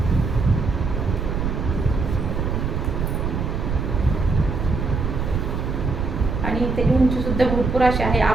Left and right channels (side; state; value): right; noise; rumble, 2 dB below the sound